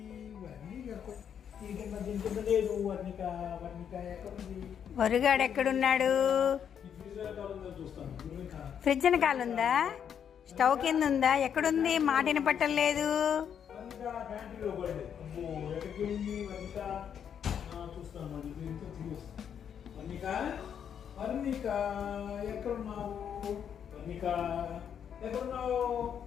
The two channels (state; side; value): quieter; right; 8.3 dB